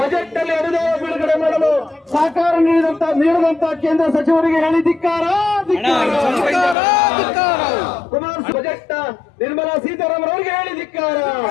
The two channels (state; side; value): drops out; right; at 6.8 s